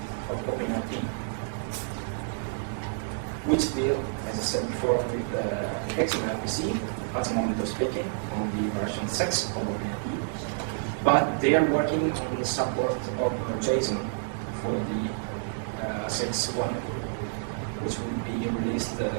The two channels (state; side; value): silent; left; digital silence